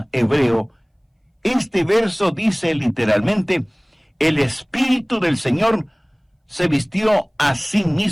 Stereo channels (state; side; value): identical; both; correlation 1.00